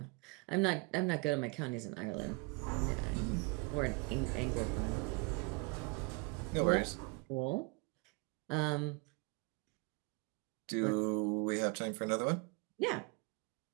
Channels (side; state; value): left; quieter; 29.4 dB